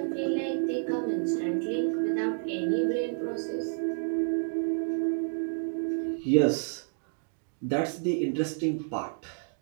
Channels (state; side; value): silent; left; digital silence